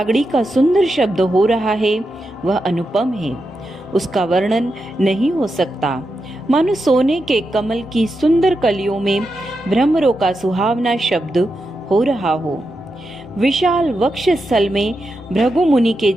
का सुंदर शब्द हो रहा है वह अनुपम है, उसका वर्णन नहीं हो सकता। मानो सोने के कमल की सुंदर कलियों में भ्रमरों का सुहावना शब्द हो रहा हो। विशाल वक्षस्थल में भृगु मुनि के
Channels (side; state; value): both; normal; correlation 0.87